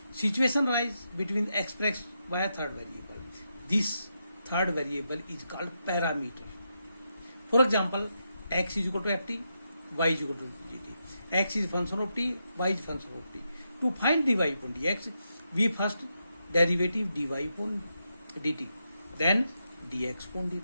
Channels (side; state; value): both; inverted; correlation -0.84